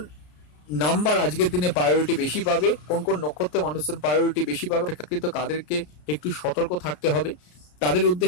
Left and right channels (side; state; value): right; late; 33 ms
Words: নাম্বার আজকের দিনে প্রায়োরিটি বেশি পাবে, কোন কোন নক্ষত্রের মানুষজন প্রায়োরিটি বেশি পাবে, অপেক্ষাকৃত কাদেরকে একটু সতর্ক থাকতে হবে, তাদের